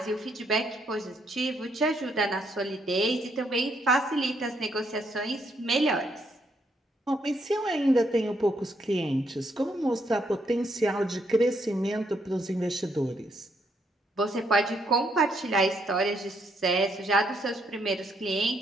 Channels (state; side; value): normal; both; correlation 0.74